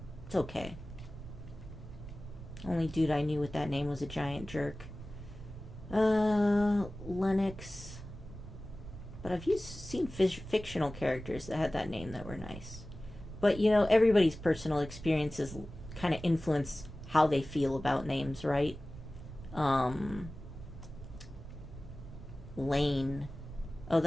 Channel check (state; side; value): noise; right; rumble, 13 dB below the sound